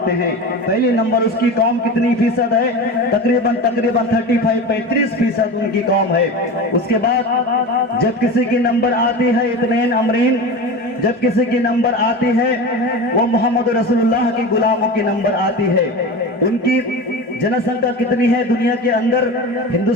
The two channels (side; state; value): both; normal; correlation 0.29